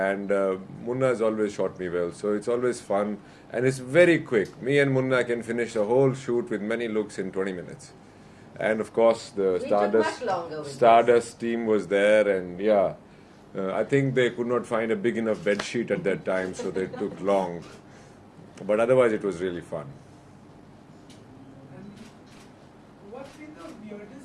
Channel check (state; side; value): identical; both; correlation 1.00